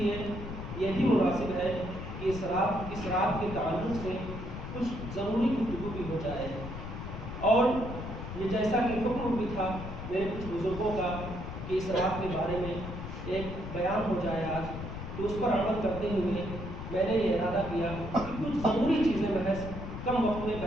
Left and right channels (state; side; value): noise; left; rumble, 8 dB below the sound